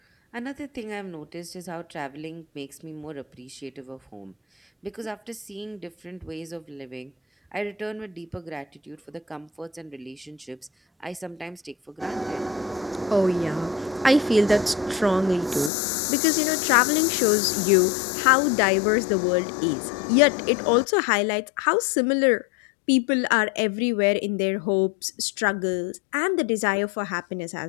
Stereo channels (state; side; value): drops out; right; at 15.7 s